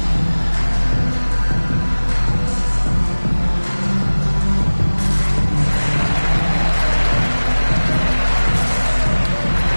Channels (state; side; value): inverted; both; correlation -1.00